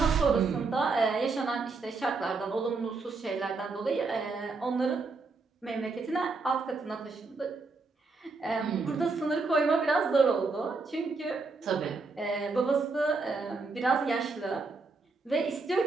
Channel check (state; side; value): quieter; left; 4.0 dB